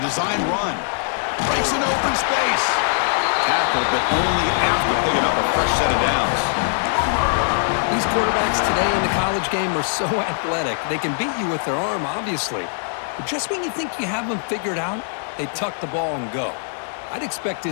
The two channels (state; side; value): silent; right; 57 dB below the other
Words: run. Breaks an open space. Tackled, but only after picking up a fresh set of downs. These quarterbacks today in the college game are so athletic. They can beat you with their arm, obviously. But just when you think you have them figured out, they tuck the ball and go. I'd expect